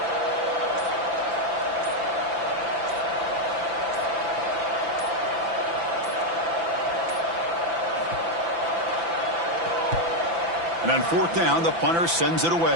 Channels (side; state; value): left; late; 5.9 ms